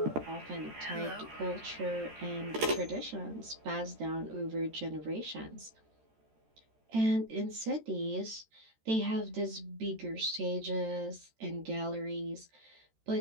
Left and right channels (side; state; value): left; late; 13 ms